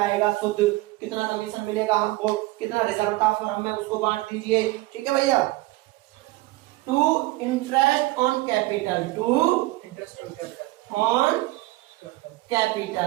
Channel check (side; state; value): left; quieter; 19.7 dB